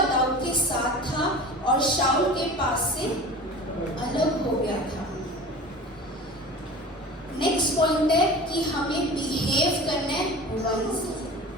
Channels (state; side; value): normal; both; correlation 0.37